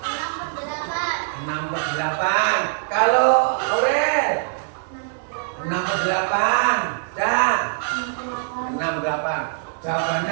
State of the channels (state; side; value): silent; left; digital silence